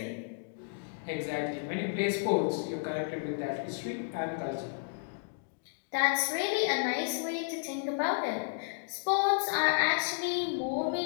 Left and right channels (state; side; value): silent; right; digital silence